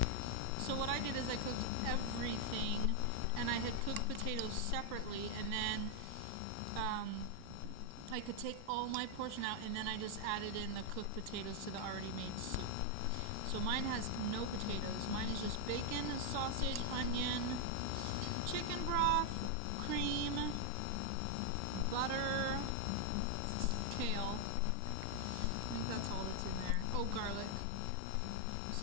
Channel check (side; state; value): both; different; correlation 0.00